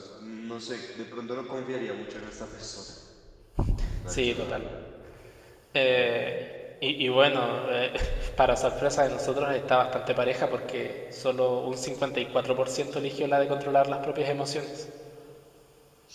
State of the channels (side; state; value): both; identical; correlation 1.00